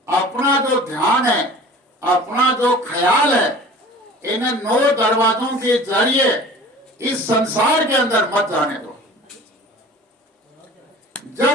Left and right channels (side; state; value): both; normal; correlation 0.43